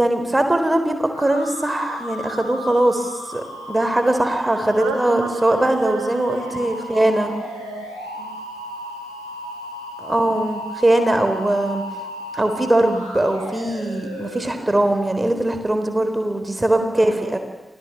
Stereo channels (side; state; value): both; normal; correlation 0.93